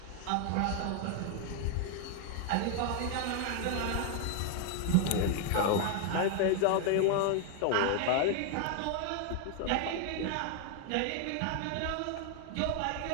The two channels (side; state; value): both; different; correlation 0.00